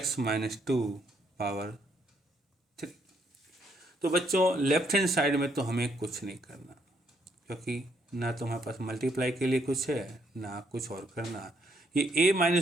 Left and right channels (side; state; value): both; normal; correlation 0.72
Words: minus 2 power 3। तो बच्चों लेफ्ट हैंड साइड में तो हमें कुछ नहीं करना, क्योंकि ना तो हमारे पास मल्टीप्लाई के लिए कुछ है ना कुछ और करना। ये a